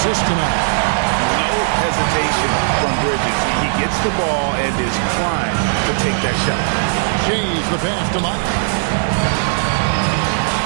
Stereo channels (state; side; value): silent; left; digital silence